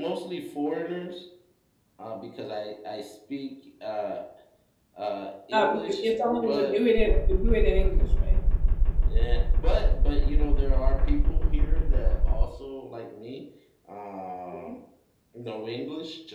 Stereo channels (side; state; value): both; identical; correlation 1.00